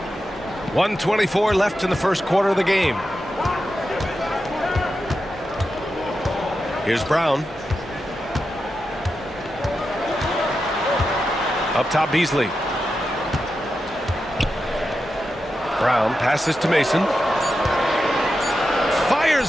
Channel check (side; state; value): both; normal; correlation 0.89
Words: 1:24 left in the first quarter of the game. Here's Brown. Up top, Beasley. Brown passes to Mason.